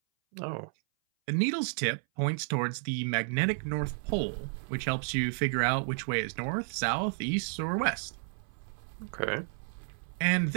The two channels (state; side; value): silent; left; 57 dB below the other